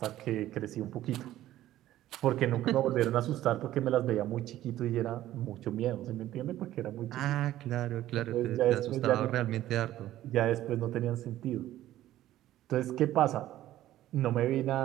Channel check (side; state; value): left; quieter; 13.9 dB